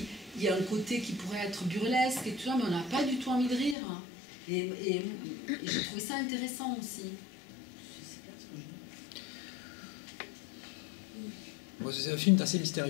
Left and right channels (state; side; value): drops out; right; at 3.8 s